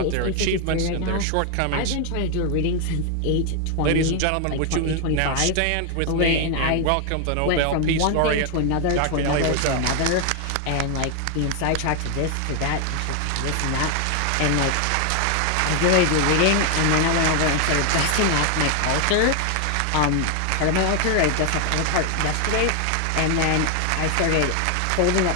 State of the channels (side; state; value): both; different; correlation 0.00